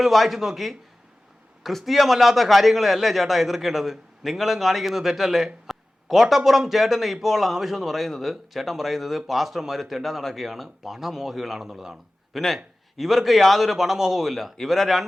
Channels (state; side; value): normal; both; correlation 0.96